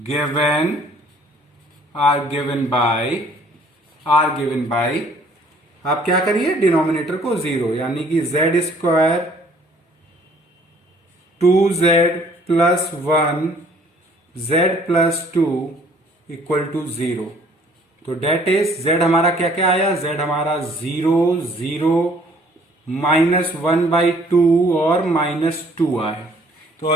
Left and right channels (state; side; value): normal; both; correlation 0.58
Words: given by आप क्या करिए, डिनोमिनेटर को 0, यानी कि z square 2z plus 1 z plus 2 equal to 0। तो डेट इज z हमारा क्या क्या आया, z हमारा 0 0 -1/2 और -2 आया।